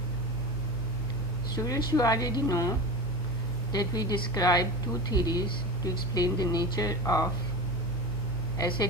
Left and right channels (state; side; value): normal; both; correlation 0.28